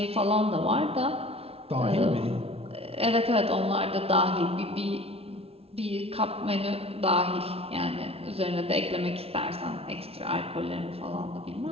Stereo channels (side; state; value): left; late; 0.29 ms